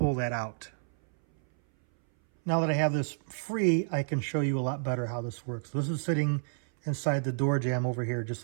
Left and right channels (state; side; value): silent; left; 58 dB below the other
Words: that out. Now that I have this free, I can show you a lot better how this works. This is sitting inside the door jamb over here,